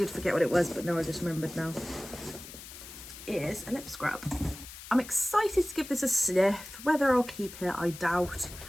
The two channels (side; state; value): left; noise; hiss, 14 dB below the sound